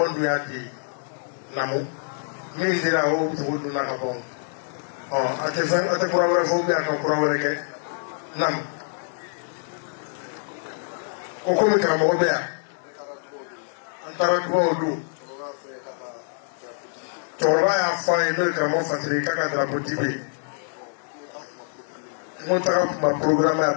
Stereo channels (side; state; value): right; silent; 62 dB below the other